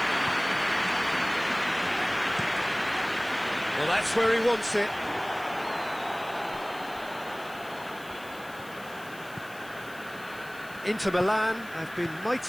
Well, that's where he wants it. Inter Milan have been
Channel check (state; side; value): noise; left; hiss, 21 dB below the sound